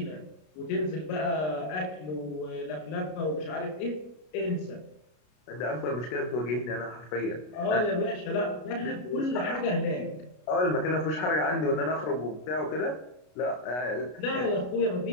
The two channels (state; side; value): late; right; 33 ms